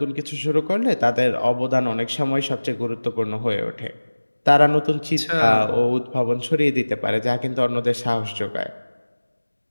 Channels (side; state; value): both; inverted; correlation -1.00